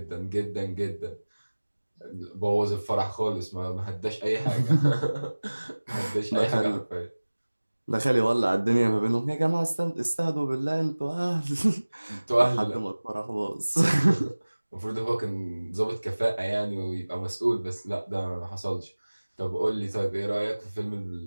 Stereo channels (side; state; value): both; inverted; correlation -1.00